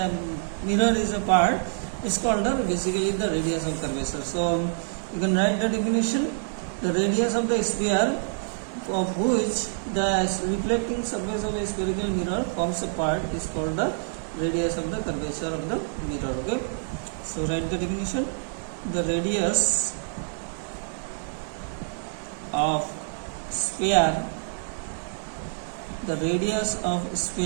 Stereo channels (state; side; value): silent; left; 60 dB below the other